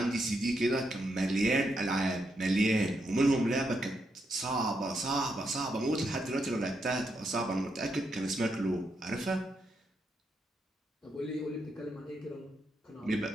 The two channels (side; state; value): both; normal; correlation 0.81